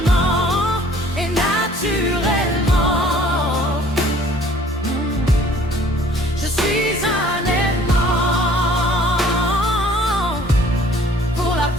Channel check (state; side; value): normal; both; correlation 0.55